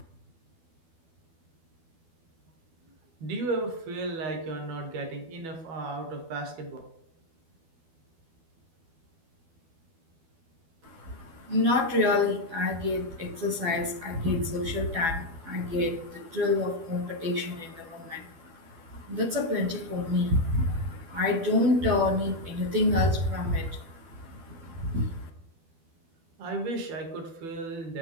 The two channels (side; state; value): left; late; 12 ms